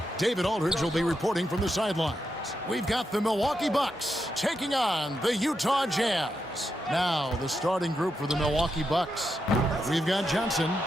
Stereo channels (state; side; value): normal; both; correlation 0.85